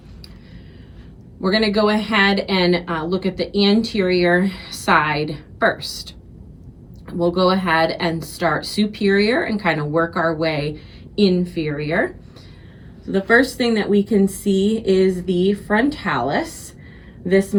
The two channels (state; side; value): identical; both; correlation 1.00